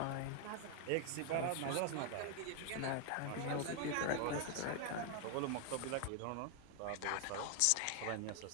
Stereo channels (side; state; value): both; different; correlation 0.00